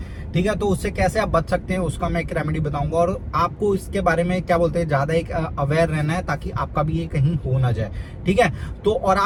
ठीक है, तो उससे कैसे आप बच सकते हैं उसका मैं एक रेमेडी बताऊंगा और आपको इसके बारे में क्या बोलते हैं ज्यादा एक अवेयर रहना है ताकि आपका भी ये कहीं हो ना जाए। ठीक है, तो और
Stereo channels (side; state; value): both; identical; correlation 1.00